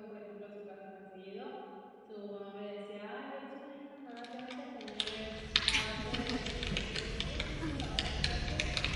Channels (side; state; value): both; identical; correlation 1.00